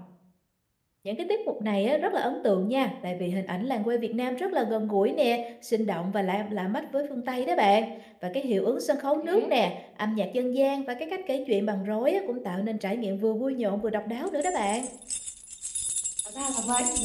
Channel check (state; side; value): identical; both; correlation 1.00